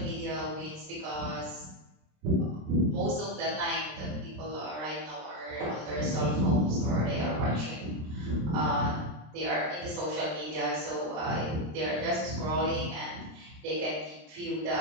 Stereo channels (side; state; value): left; late; 26 ms